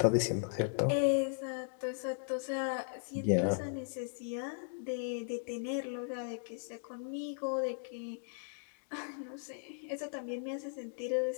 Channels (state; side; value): silent; right; digital silence